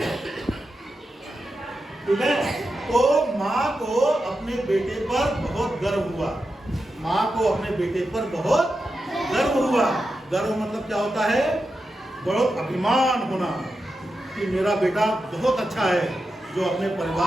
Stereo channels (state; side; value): normal; both; correlation 0.89